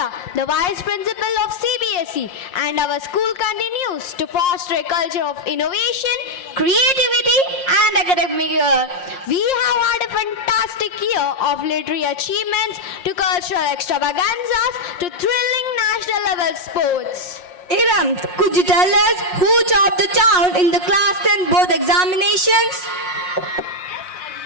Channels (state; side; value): late; right; 5.6 ms